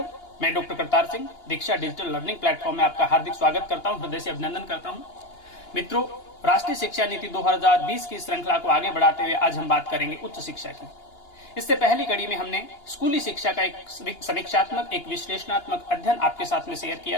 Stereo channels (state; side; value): late; right; 2.8 ms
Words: मैं डॉक्टर करतार सिंह दीक्षा डिजिटल लर्निंग प्लेटफॉर्म में आपका हार्दिक स्वागत करता हूं, हृदय से अभिनंदन करता हूं। मित्रों, राष्ट्रीय शिक्षा नीति 2020 की श्रृंखला को आगे बढ़ाते हुए आज हम बात करेंगे उच्च शिक्षा की। इससे पहली कड़ी में हमने स्कूली शिक्षा का एक समीक्षात्मक, एक विश्लेषणात्मक अध्ययन आपके साथ में शेयर